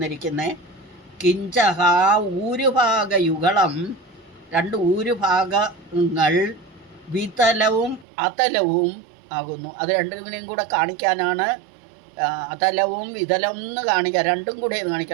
കിഞ്ചഹ ഊരുഭാഗയുഗളം, 2 ഊരുഭാഗങ്ങൾ വിതലവും അതലവും ആകുന്നു. അത് രണ്ടിനെയും കൂടെ കാണിക്കാനാണ് അതലവും വിതലവും എന്ന് കാണിക്കുക, രണ്ടും കൂടി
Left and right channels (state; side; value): drops out; left; at 8.1 s